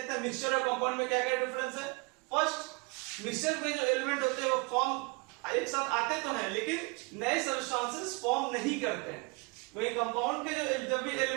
हैं मिक्सचर और कंपाउंड में क्या क्या डिफरेंस है। फर्स्ट, मिक्सचर में जो एलिमेंट होते हैं वो फॉर्म एक साथ आते तो हैं लेकिन नए सब्सटेंसेस फॉर्म नहीं करते हैं। वही कंपाउंड के जो जब भी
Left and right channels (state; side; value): quieter; left; 29.1 dB